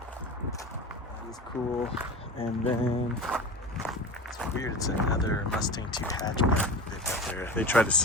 That is cool. And then it's weird, it's another Mustang 2 hatchback they've got there. They tried to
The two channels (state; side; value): normal; both; correlation 0.32